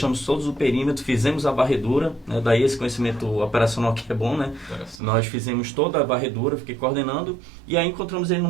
todos o perímetro, fizemos a varredura, né? Daí esse conhecimento operacional que é bom, né? Nós fizemos toda a varredura, fiquei coordenando, e aí encontramos ele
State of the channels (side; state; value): left; drops out; at 5.0 s